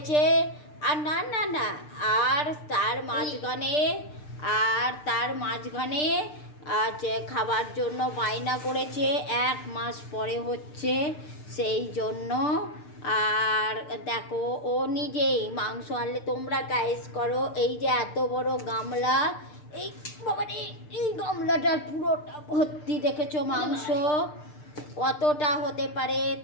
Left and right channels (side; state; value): right; late; 6.7 ms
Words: আর না না না আর তার মাঝখানে খাবার জন্য বায়না করেছে। 1 মাস পরে হচ্ছে, সেই জন্য। আর দেখো, ও নিজেই মাংস আনলে তোমরা গাইস করো। এই যে এত বড় গামলা, এই বাবারে, এই গামলাটার পুরোটা ভর্তি, দেখেছো মাংস। কতটা হতে পারে